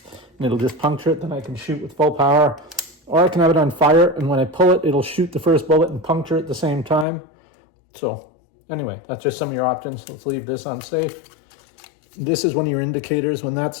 and it'll just puncture it, then I can shoot with full power. Or I can have it on fire, and when I pull it, it'll shoot the first bullet and puncture at the same time. So anyway, that's just some of your options. Let's leave this on safe. This is one of your indicators. When that's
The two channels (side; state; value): right; drops out; at 7.1 s